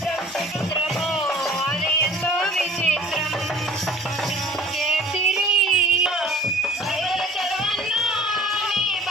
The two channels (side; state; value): both; normal; correlation 0.48